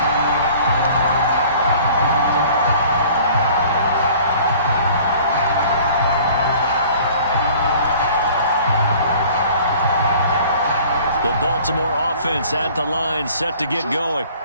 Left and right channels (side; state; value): both; inverted; correlation -0.50